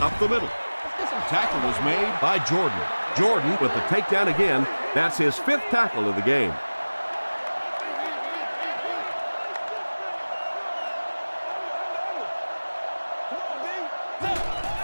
up the middle. Tackle was made by Jordan. Jordan with the takedown again. That's his 5th tackle of the game.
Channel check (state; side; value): inverted; both; correlation -1.00